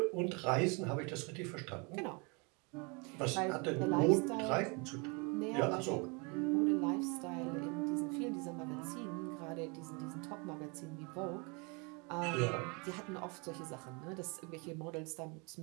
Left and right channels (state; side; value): quieter; left; 31.2 dB